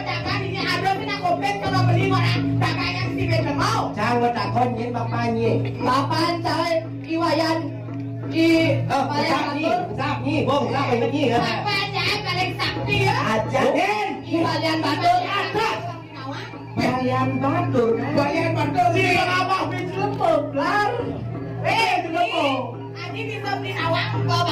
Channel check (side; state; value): both; identical; correlation 1.00